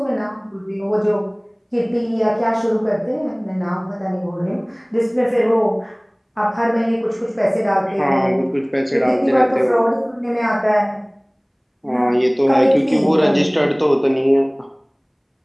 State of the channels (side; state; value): both; identical; correlation 1.00